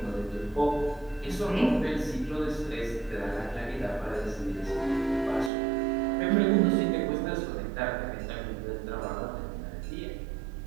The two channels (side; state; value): left; drops out; at 5.5 s